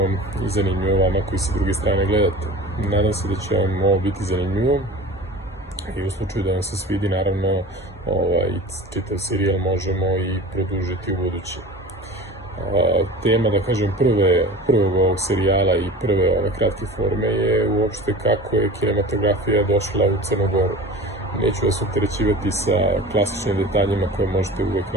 i zanimljivo vama koji sa druge strane gledate. Nadam se da će vam ovo biti zanimljivo i u slučaju da vam se svidi, naravno, čitav serijal možemo i produžiti u budući. Tema, da kažem, prvog ovog serijala i prve ove kratke forme je uopšte kako je kinematografija došla u Crnu Goru. Neću vas opterećivati sa klasičnim detaljima koje možete uvek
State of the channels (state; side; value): normal; both; correlation 0.37